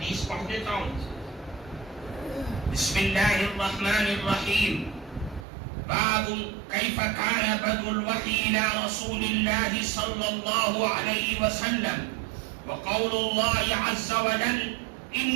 پڑھ دیتا ہوں. بسم اللہ الرحمن الرحیم. باب کیف کان بدء الوحی الى رسول اللہ صلی اللہ علیہ وسلم وقول اللہ عز وجل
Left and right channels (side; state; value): left; drops out; at 5.5 s